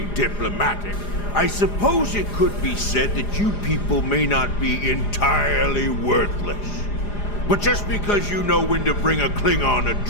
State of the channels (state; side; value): late; right; 4.9 ms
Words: diplomatic, I suppose it could be said that you people may not be entirely worthless. But just because you know when to bring a Klingon a